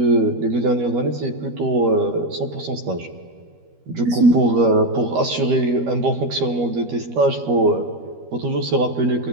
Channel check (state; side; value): late; left; 13 ms